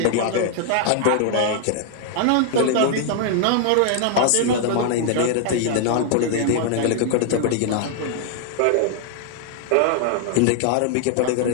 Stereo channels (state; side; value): different; both; correlation 0.00